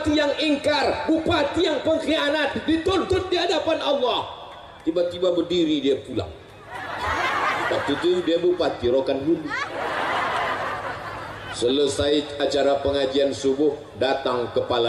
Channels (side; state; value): both; identical; correlation 1.00